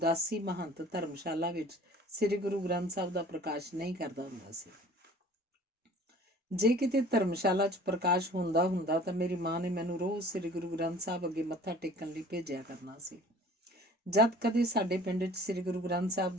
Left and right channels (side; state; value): both; normal; correlation 0.48